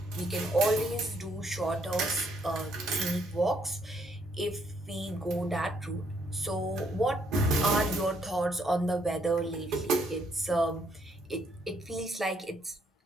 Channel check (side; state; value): both; normal; correlation 0.70